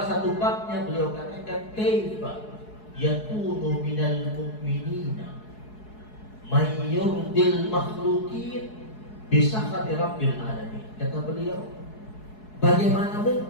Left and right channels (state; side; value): late; right; 4.7 ms